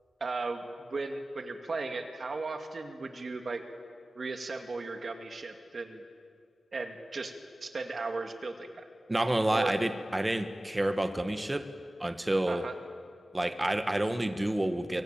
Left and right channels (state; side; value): normal; both; correlation 0.98